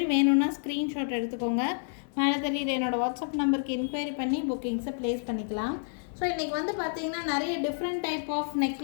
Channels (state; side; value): silent; right; 58 dB below the other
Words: வேணும்னா ஸ்க்ரீன்ஷாட் எடுத்துக்கோங்க. மேலே தெரியுது என்னோடய வாட்ஸ்அப் நம்பருக்கு என்கொயரி பண்ணி புக்கிங்ஸை ப்ளேஸ் பண்ணிக்கலாம். ஸோ இன்றைக்கி வந்து பார்த்திங்கன்னா நிறைய different type of